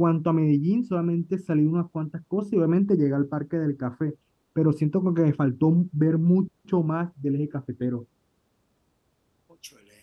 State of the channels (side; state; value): both; identical; correlation 1.00